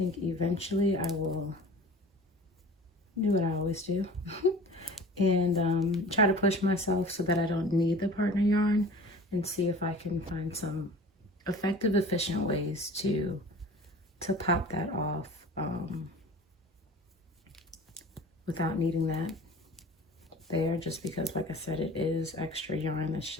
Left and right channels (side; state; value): both; normal; correlation 0.41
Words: eventually I will do what I always do and try to push myself so that I don't need the partner yarn, and see if I can find some effective, efficient ways to pop that off without needing that there, just because, like I said, it is extra yarn that's